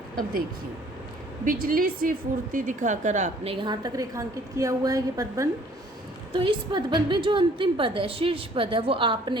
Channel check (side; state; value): both; normal; correlation 0.57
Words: अब देखिए, बिजली सी फुर्ती दिखाकर आपने, यहाँ तक रेखांकित किया हुआ है ये पदबंध। तो इस पदबंध में जो अंतिम पद है, शीर्ष पद है, वो